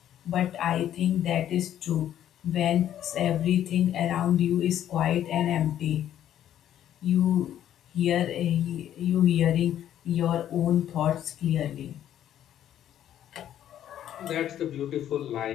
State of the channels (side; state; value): right; quieter; 11.1 dB